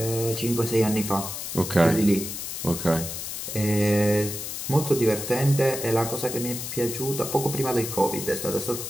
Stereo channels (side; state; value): left; noise; hiss, 6 dB below the sound